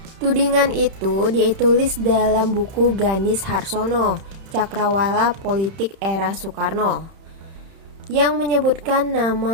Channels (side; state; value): left; late; 31 ms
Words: Tudingan itu ditulis dalam buku Ganis Harsono, Cakrawala Politik Era Soekarno, yang menyebutkan